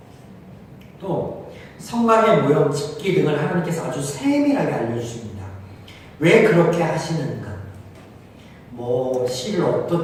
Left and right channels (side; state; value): both; identical; correlation 1.00